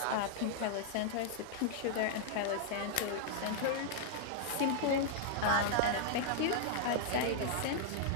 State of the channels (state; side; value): different; both; correlation -0.01